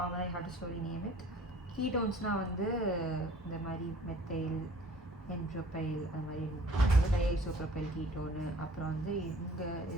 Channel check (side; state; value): both; normal; correlation 0.51